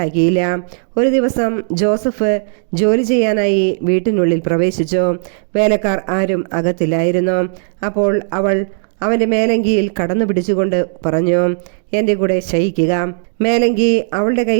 ഒരു ദിവസം ജോസഫ് ജോലി ചെയ്യാനായി വീട്ടിനുള്ളിൽ പ്രവേശിച്ചു. വേലക്കാർ ആരും അകത്തില്ലായിരുന്നു. അപ്പോൾ അവൾ അവൻ്റെ മേലങ്കിയിൽ കടന്നു പിടിച്ചുകൊണ്ട് പറഞ്ഞു, എൻ്റെ കൂടെ ശയിക്കുക. മേലങ്കി അവളുടെ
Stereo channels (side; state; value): left; silent; digital silence